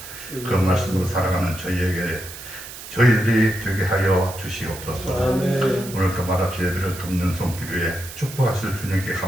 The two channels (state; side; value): noise; right; hiss, 13 dB below the sound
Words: 그 말씀으로 살아가는 저희들이 되게 하여 주시옵소서. 오늘도 말합시 예배를 돕는 손길 위에 축복하실 주님께